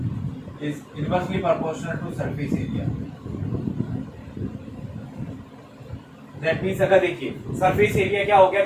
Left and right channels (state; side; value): identical; both; correlation 1.00